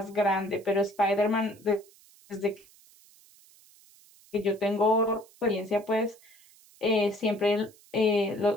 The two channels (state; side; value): noise; right; hiss, 27 dB below the sound